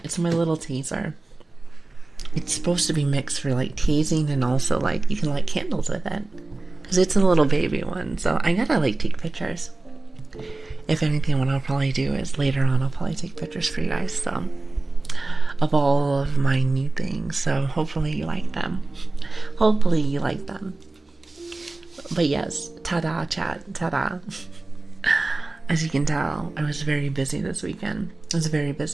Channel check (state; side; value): quieter; left; 3.2 dB